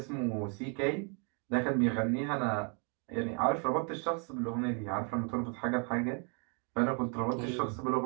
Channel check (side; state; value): left; quieter; 38.9 dB